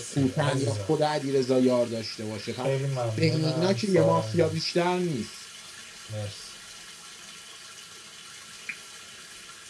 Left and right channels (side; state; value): both; identical; correlation 1.00